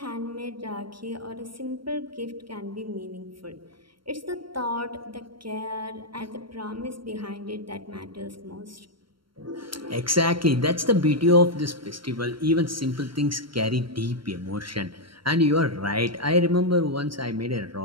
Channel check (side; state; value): left; late; 0.73 ms